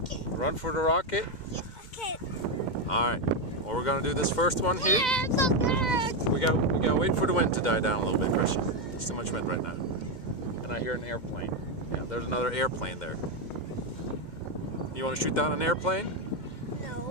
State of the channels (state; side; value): late; right; 2.0 ms